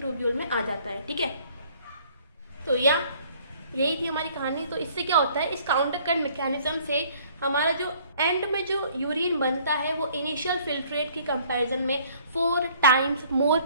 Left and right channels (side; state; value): both; inverted; correlation -0.58